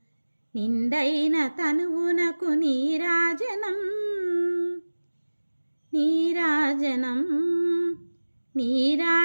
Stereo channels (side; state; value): both; inverted; correlation -1.00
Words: నిండైన తనువునకు నీరాజనం నీరాజనం